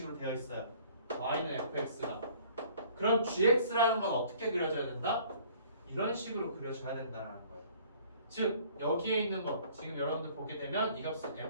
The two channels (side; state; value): both; inverted; correlation -0.55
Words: 되어 있어요. y는 fx가. 그럼 gx라는 건 어떻게 그려져야 된다? 이런 식으로 그려져야 된다는 거예요. 즉 여기에 있는 거 지금 여러분들 보게 되면 이 값은